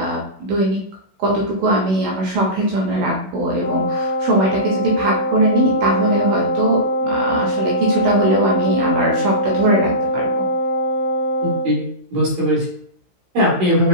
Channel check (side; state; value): left; late; 16 ms